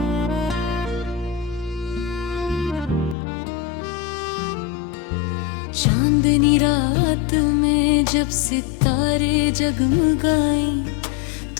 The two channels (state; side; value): drops out; right; at 3.2 s